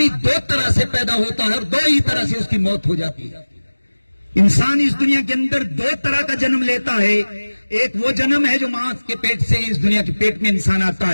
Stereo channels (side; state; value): both; inverted; correlation -1.00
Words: 2 طرح سے پیدا ہوتا ہے اور 2 ہی طرح سے اس کی موت ہو جاتی ہے. انسان اس دنیا کے اندر 2 طرح کا جنم لیتا ہے. ایک وہ جنم ہے جو ماں کے پیٹ سے اس دنیا کے پیٹ میں انسان آتا